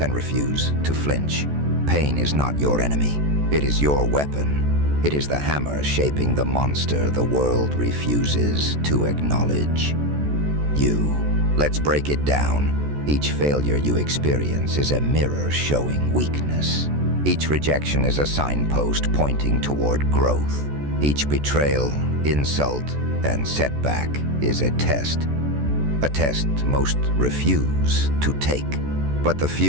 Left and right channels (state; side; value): late; left; 14 ms